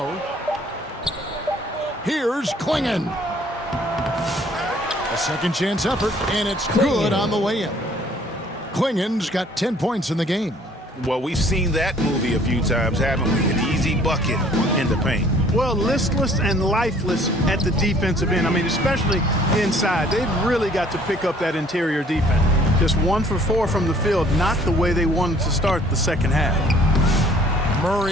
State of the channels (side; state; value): both; normal; correlation 0.57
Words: Here's Klingon. A second chance effort, and it's good on the way in. Klingen's got 10 points in the game. Well, we've seen that movie a few times, haven't we? An easy bucket in the paint. Well, listless and lifeless at the defensive end. I mean, especially inside. They've really got to pick up that interior defense. Just 1 for 4 from the field, not the way they wanted to start the second half.